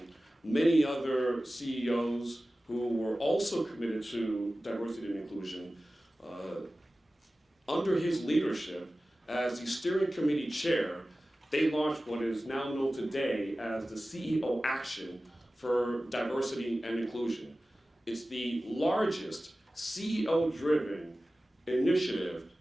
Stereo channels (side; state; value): both; normal; correlation 0.96